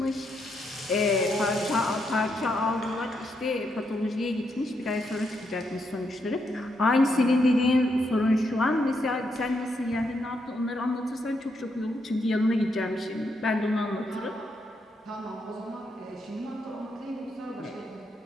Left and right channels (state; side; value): normal; both; correlation 0.79